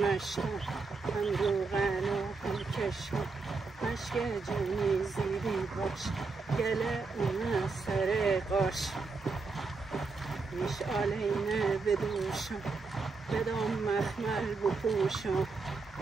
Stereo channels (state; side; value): quieter; left; 4.2 dB